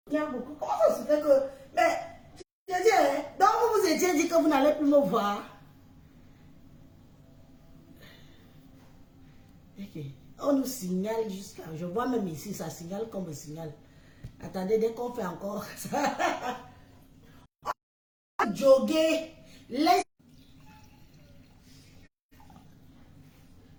Comment ça se fait que... Mais, je dis, hein, donc vous vous étiez dit que vous n'allez plus me voir. Ok. On nous signale jusqu'à... Je vois même ici, ça signale comme un signal. Attendez, dès qu'on fait encore ça... Jogger les...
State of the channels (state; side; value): identical; both; correlation 1.00